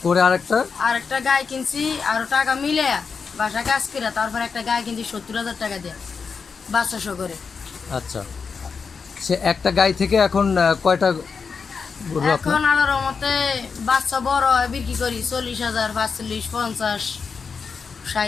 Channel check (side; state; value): right; quieter; 5.4 dB